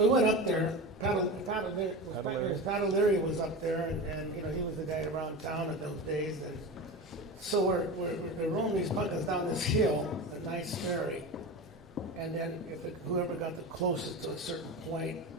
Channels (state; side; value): normal; both; correlation 0.27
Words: we went up there. Pat O'Leary was up there, and he was the guy around town in those days. And so we're rolling these pumpkins down this hill at Knight's Ferry, and then whoever got the closest to a certain point,